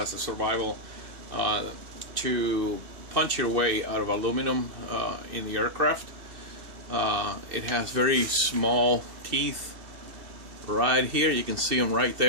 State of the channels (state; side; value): late; left; 2.6 ms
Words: a survival to punch your way out of aluminum in the aircraft. It has very small teeth right here. You can see them right